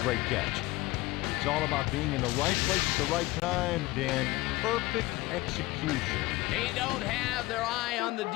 catch. It's all about being in the right place at the right time, Dan. Perfect execution. They don't have their eye on the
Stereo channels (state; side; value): quieter; right; 20.2 dB